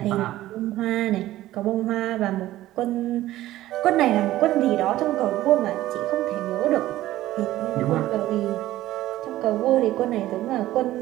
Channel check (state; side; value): quieter; left; 15.1 dB